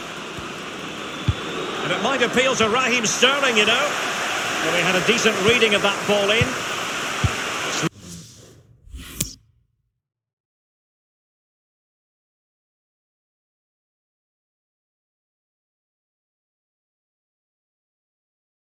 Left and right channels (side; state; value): both; identical; correlation 1.00